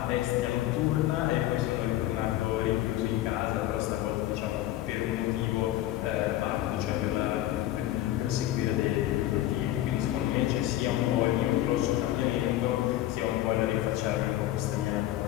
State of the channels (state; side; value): quieter; right; 14.3 dB